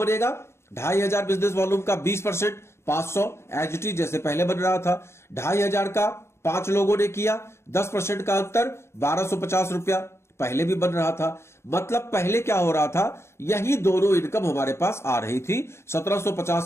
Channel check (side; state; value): right; late; 0.13 ms